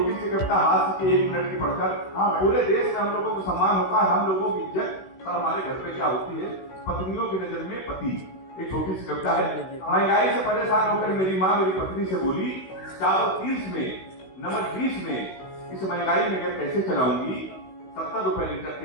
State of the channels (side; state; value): right; late; 16 ms